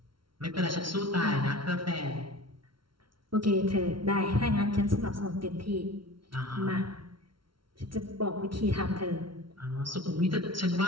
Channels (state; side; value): late; left; 0.74 ms